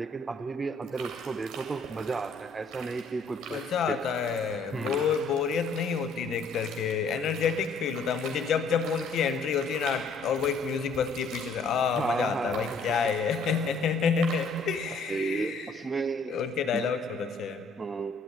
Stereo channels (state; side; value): quieter; right; 3.7 dB